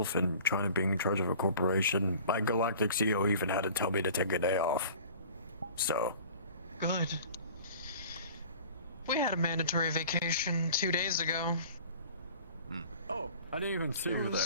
and trying to be in charge of a corporation, my galactic CEO even had to tell me to take a day off. So. Good. We had a mandatory vacation 2 days ago. Oh, I didn't even see It you there.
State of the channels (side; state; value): both; inverted; correlation -0.45